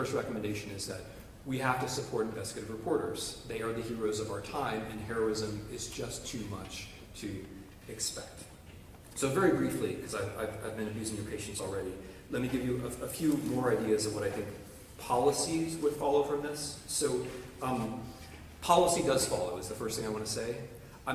recommendation is that we have to support investigative reporters. They are the heroes of our time, and heroism is just too much to expect. So very briefly, because I've been abusing your patience already, let me give you a few more ideas of what I think policies would follow from this. So policy does follow, is the first thing I want to say.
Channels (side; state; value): both; identical; correlation 1.00